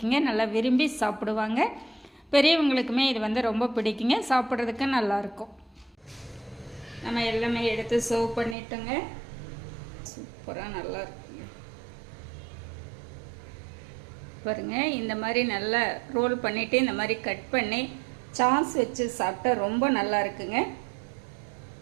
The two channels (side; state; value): left; drops out; at 8.6 s